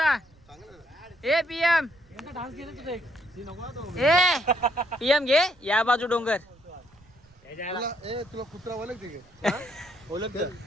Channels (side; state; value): right; noise; rumble, 29 dB below the sound